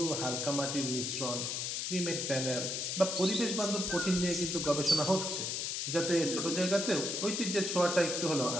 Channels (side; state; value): left; noise; hiss, 2 dB below the sound